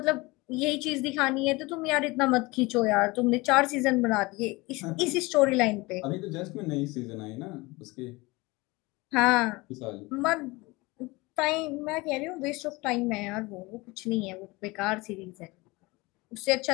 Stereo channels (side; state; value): right; quieter; 23.1 dB